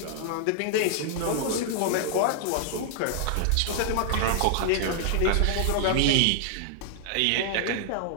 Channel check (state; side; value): different; both; correlation -0.01